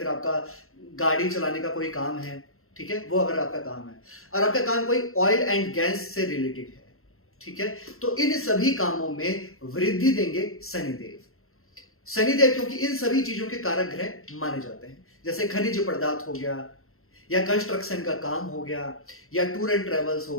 आपका गाड़ी चलाने का कोई काम है, ठीक है, वो अगर आपका काम है, और आपका काम कोई ऑयल एंड गैस से रिलेटेड है, ठीक है, तो इन सभी कामों में वृद्धि देंगे शनिदेव। शनिदेव क्योंकि इन सभी चीजों के कारक ग्रह माने जाते हैं, जैसे खनिज पदार्थ हो गया, या कंस्ट्रक्शन का काम हो गया, या टूर एंड ट्रेवल्स हो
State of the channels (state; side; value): late; right; 0.62 ms